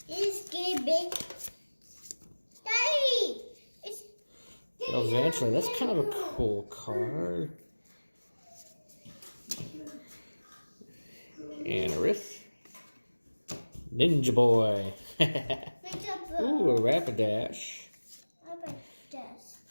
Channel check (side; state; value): both; inverted; correlation -1.00